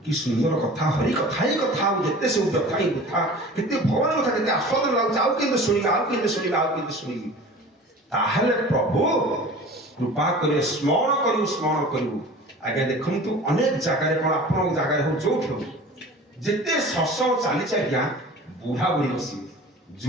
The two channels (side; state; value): both; normal; correlation 0.40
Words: କି ସୁନ୍ଦର କଥା ହରି କଥା ହିଁ କଥା ଆଉ ଯେତେ ସବୁ କଥା ହିଁ କଥା କେତେ ଭଗବାନ କଥା କେତେ ଆସ୍ୱାଦନ ଲାଗୁଛି ଆଉ କେମିତି ଶୁଣିବି ତାହେଲେ ପ୍ରଭୁ କୃପା କରି ସ୍ମରଣ କରିବୁ ଆଜ୍ଞା ଦେଖନ୍ତୁ ଅନେକ ଜାଗାରେ କଣ ଆପଣଙ୍କ ଜାଗାରେ ହଉ ଯୋଉଠି ହଉ ଯେତେ ସତ୍ସଙ୍ଗ ଚାଲିଛି ଆଜ୍ଞା ବୁଢା ବୁଢୀ ବସିବେ